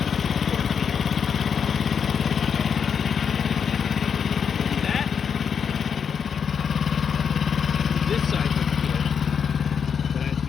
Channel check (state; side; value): quieter; right; 6.9 dB